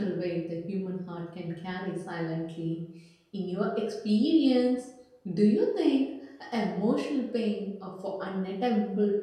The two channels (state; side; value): identical; both; correlation 1.00